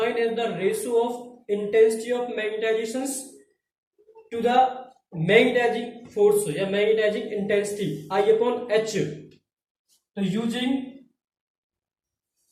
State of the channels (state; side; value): identical; both; correlation 1.00